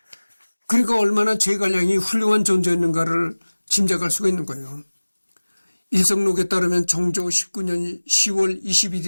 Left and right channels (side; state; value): both; inverted; correlation -1.00